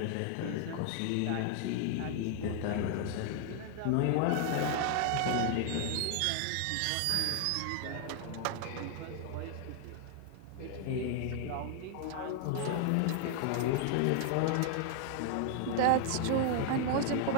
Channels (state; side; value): different; both; correlation 0.00